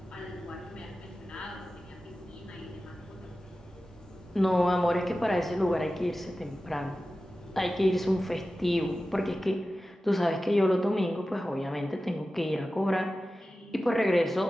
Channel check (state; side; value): normal; both; correlation 0.95